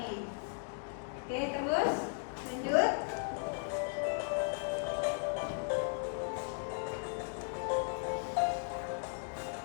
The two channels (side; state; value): right; silent; 53 dB below the other